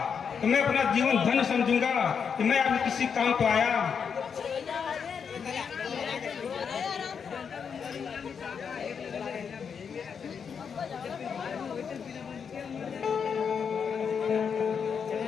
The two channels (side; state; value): right; quieter; 6.6 dB